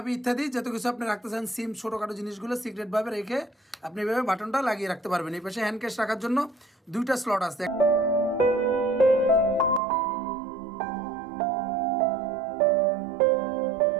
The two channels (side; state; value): left; drops out; at 9.8 s